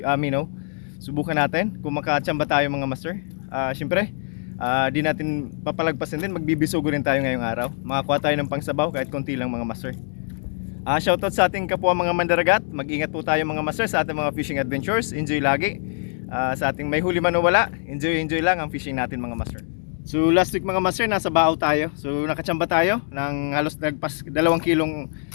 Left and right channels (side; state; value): right; silent; 63 dB below the other